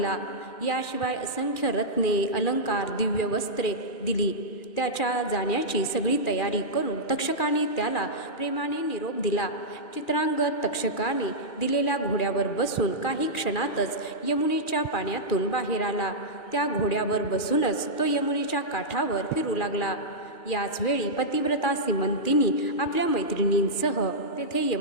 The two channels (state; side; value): late; right; 2.4 ms